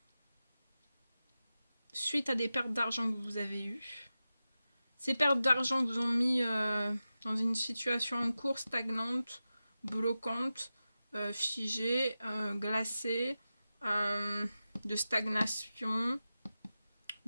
suite à des pertes d'argent que vous avez eues. Ces pertes d'argent vous ont mis dans une situation en cours stagnante, bloquante, figée, glacée, de stagnation,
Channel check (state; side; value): inverted; both; correlation -0.93